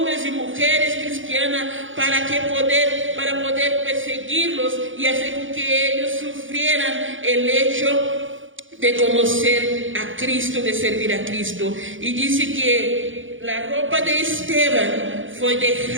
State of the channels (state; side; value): late; left; 0.57 ms